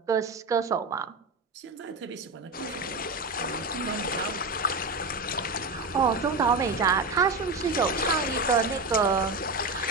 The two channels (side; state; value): left; quieter; 3.2 dB